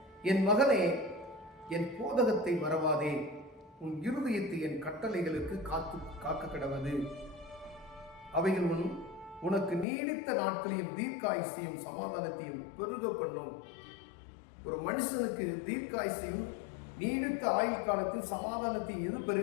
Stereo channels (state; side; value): drops out; right; at 9.9 s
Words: என் மகனே, என் போதகத்தை மறவாதே, உன் இருதயத்தை என் கட்டளைகளுக்கு காக்க கடவது. அவைகள் உனக்கு நீடித்த நாட்களையும் தீர்க்காயுசையும் சமாதானத்தையும் பெருக பண்ணும். ஒரு மனுஷனுக்கு தீர்க்காயுசையும் நீடித்த ஆயுள் காலத்தில் சமாதானத்தையும் எது